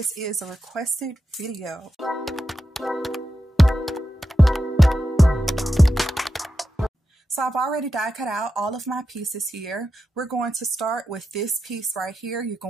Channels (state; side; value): normal; both; correlation 0.89